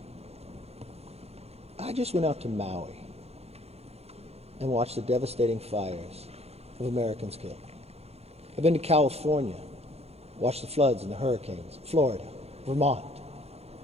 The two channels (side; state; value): left; late; 0.30 ms